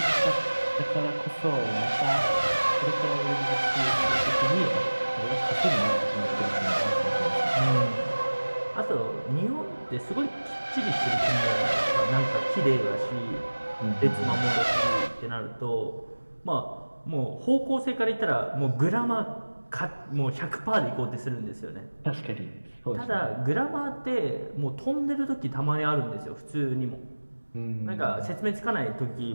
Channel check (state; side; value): inverted; both; correlation -1.00